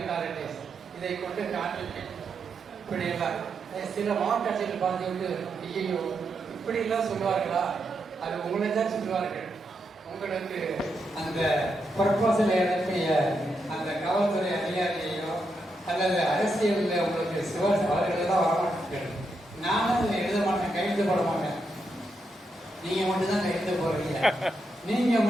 authorities, இதை கொண்டு காண்பிப்பேன். இப்படியெல்லாம் சில மாவட்ட ஆட்சியர்கள் பார்த்துவிட்டு, ஐயோ இப்படியெல்லாம் சொல்லுவார்களா? அது உங்களை தான் சொல்லுவார்கள். உங்களுக்கு அந்த ப்ரொபோசல் அனுப்பிய அந்த காவல்துறை அதிகாரியையோ அல்லது அரசியலில் உங்களுக்கு சிவாஸ் அவர்களெல்லாம் வரமாட்டேன். நானும் இதை எழுத மாட்டேன், கையெழுத்து போட மாட்டேன். நீங்கள் மட்டும்தான் கையெழுத்து போடுறீங்க, நீங்கள்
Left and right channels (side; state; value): both; normal; correlation 0.83